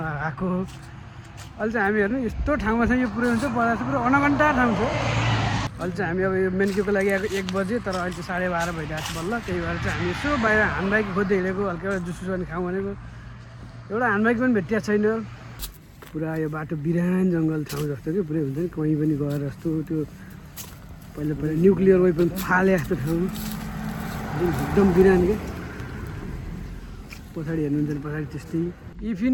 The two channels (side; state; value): both; identical; correlation 1.00